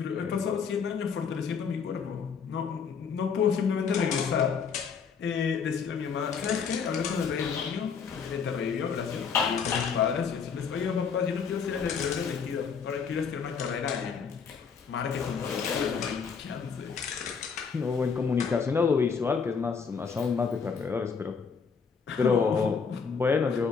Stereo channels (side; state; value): right; quieter; 6.1 dB